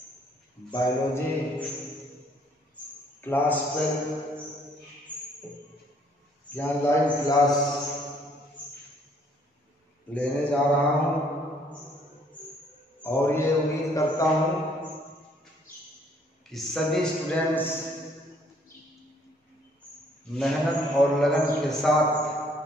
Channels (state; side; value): normal; both; correlation 0.63